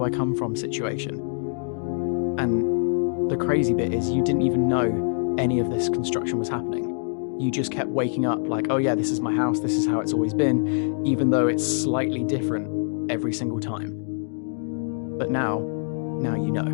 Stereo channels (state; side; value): silent; right; digital silence